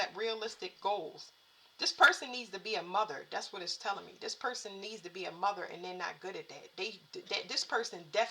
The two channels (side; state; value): both; identical; correlation 1.00